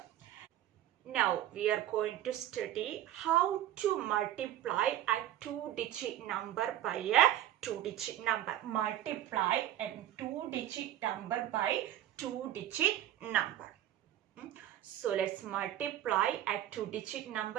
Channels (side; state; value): left; quieter; 12.6 dB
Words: Now we are going to study how to multiply a two-digit number by a two-digit number. Multiply a two-digit number by two-digit number. So let's multiply a two-digit